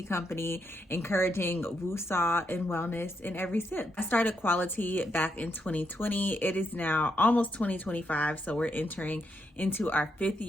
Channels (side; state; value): both; normal; correlation 0.80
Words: company encouraging woosah and wellness in every sip. I started qualiTEA back in 2020. It is now almost 2025, so we're entering into our 5th